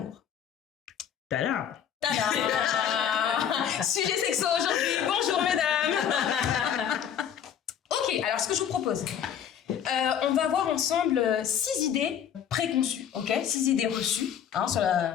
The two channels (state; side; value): quieter; right; 9.0 dB